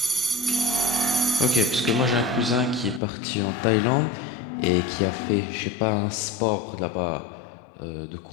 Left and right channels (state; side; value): drops out; right; at 3.0 s